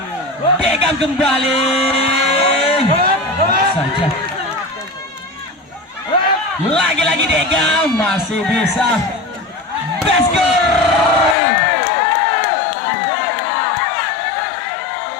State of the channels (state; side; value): drops out; right; at 11.4 s